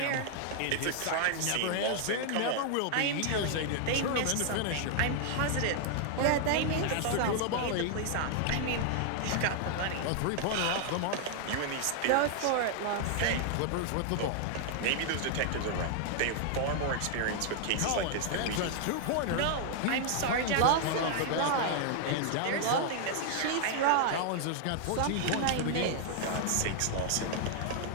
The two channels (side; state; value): both; different; correlation 0.00